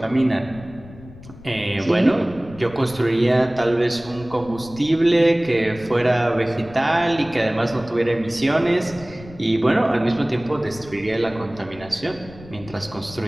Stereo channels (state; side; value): noise; left; rumble, 18 dB below the sound